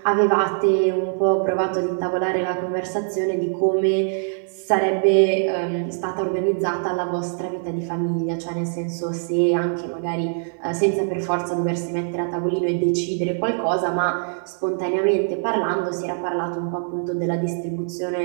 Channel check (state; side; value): silent; left; digital silence